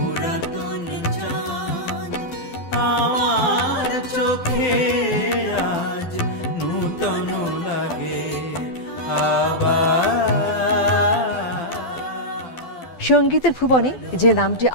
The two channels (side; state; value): right; late; 12 ms